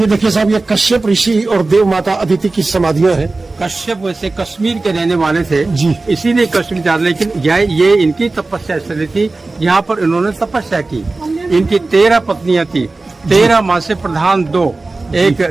देखिए साहब, ये कश्यप ऋषि और देव माता अदिति की समाधियां हैं। कश्यप वैसे कश्मीर के रहने वाले थे जी। इसीलिए कश्मीर जा, लेकिन ये इनकी तपस्या स्थली थी। यहाँ पर इन्होंने तपस्या की। इनकी 13 पत्नियां थी, 13 माँ से प्रधान 2, एक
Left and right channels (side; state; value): left; quieter; 3.4 dB